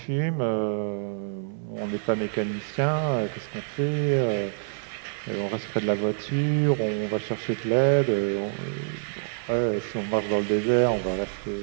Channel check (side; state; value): left; silent; 60 dB below the other